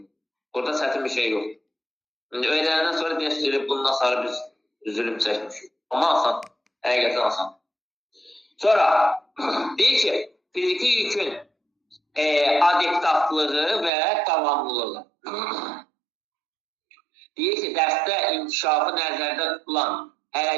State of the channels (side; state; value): left; drops out; at 13.9 s